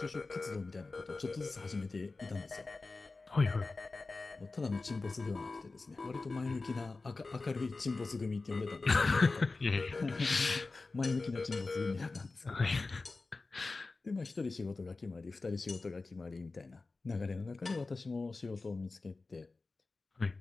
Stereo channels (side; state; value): right; quieter; 3.7 dB